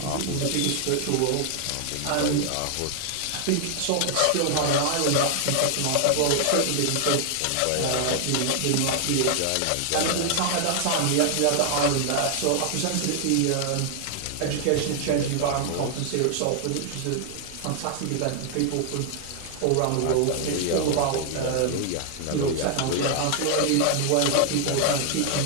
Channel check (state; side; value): different; both; correlation 0.00